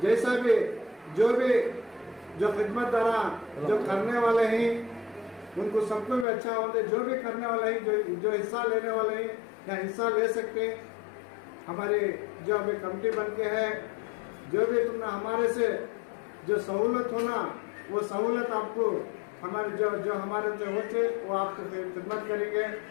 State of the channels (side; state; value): right; drops out; at 6.2 s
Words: जैसा भी जो खिदमतदारा जो करने वाले हैं उनको सबको भी अच्छा होते, जो भी करने वाले हैं जो हिस्सा लेने वाले हैं या हिस्सा ले सकते हैं। हमारी जो अभी कमेटी बन के है, जो भी तुमने हमारे से जो सहूलत होना वो सहूलत आपको हमारे जो हमारे से होते वो आपको खिदमत करेंगे।